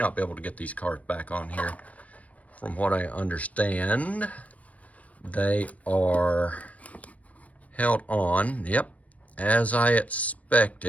be able to get these cars back on here. From what I understand, they are held on, yep, as I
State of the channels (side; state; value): right; late; 0.068 ms